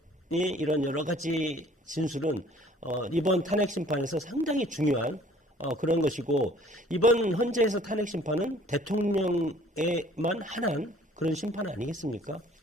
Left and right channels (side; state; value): both; normal; correlation 0.55